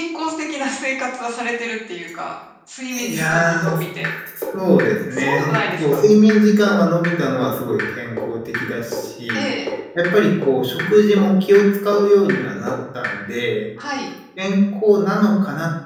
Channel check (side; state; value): both; identical; correlation 1.00